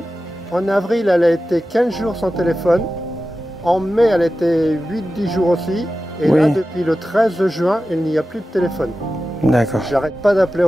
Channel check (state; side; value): normal; both; correlation 0.94